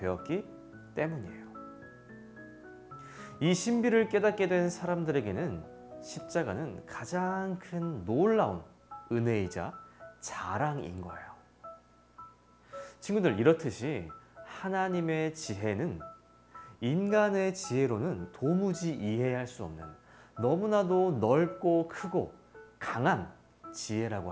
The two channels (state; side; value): identical; both; correlation 1.00